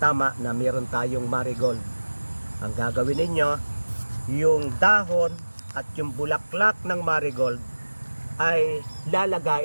na meron tayong marigold. Ang gagawin ninyo, yung dahon at yung bulaklak ng marigold ay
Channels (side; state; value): both; inverted; correlation -1.00